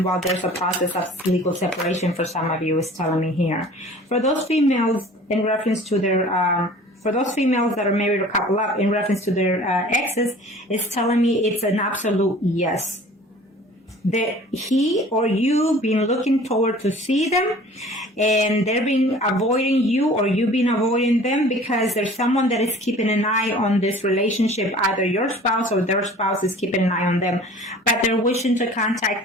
while there's a process of legal separation for some of you, is telling me here. For those females, in reference to their... for those females that are married or couple up, in reference to their exes, it's telling me it's an absolute yes. That he or you been looking forward to see them, and they're been avoiding you, or you been avoiding them, because there's someone that is keeping an eye on this relationship. Either your spouse or their spouse is keeping an eye on them, but they're wishing to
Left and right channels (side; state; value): both; normal; correlation 0.46